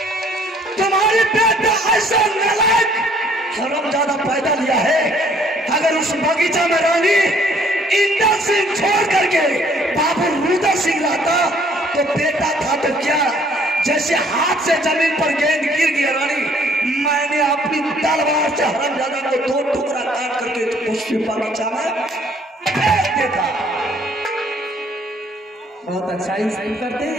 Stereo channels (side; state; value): both; normal; correlation 0.61